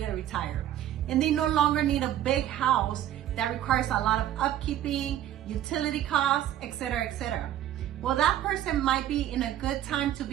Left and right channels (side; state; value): left; quieter; 12.0 dB